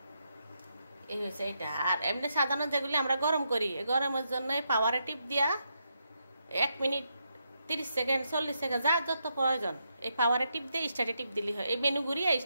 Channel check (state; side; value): inverted; both; correlation -0.81